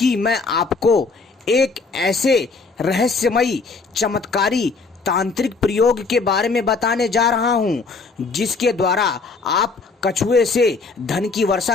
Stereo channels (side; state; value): right; quieter; 4.2 dB